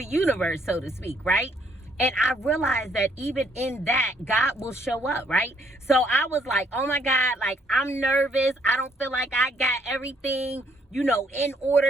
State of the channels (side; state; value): both; normal; correlation 0.68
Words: universe, so to speak, right? And I realized that even in that, God will show up, right? So I was like, oh my God, like, I'm nervous. I don't feel like I got everything, you know, in